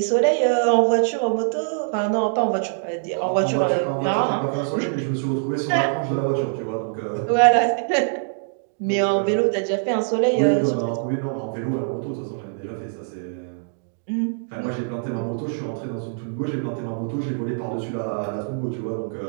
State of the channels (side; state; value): left; silent; digital silence